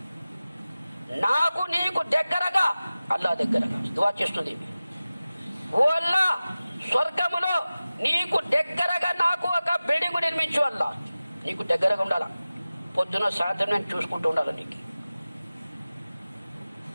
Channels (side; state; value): both; inverted; correlation -0.96